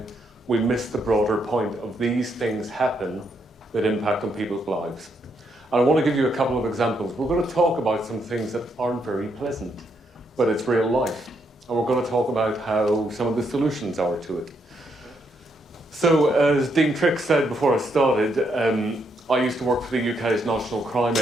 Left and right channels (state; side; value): normal; both; correlation 0.77